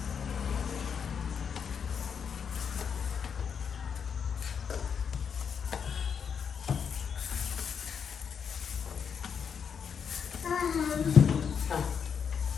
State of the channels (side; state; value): right; quieter; 6.9 dB